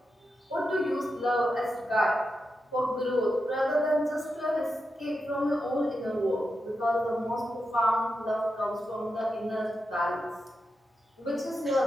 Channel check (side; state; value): both; normal; correlation 0.88